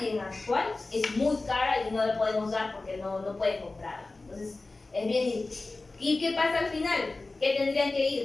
en actual es muy cara y no la podemos dar porque no pueden comprarla. Entonces, es bien. ¿Y qué pasa al final? ¿Qué tendrían que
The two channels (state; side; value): quieter; right; 3.3 dB